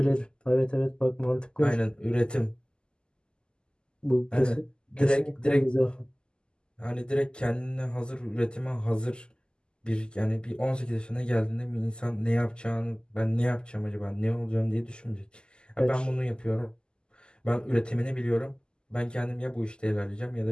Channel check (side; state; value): right; late; 0.047 ms